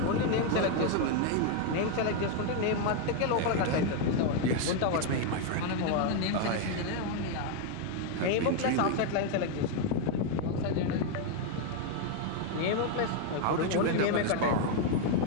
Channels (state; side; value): different; both; correlation 0.01